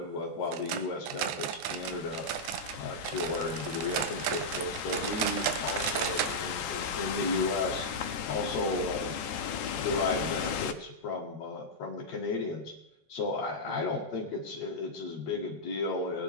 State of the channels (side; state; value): both; normal; correlation -0.07